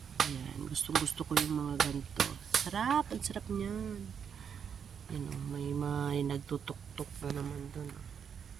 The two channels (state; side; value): quieter; left; 7.4 dB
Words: Ayan, gusto ko yung mga ganito. Sarap, ang sarap niyan. May nagtutok-tok na naman doon.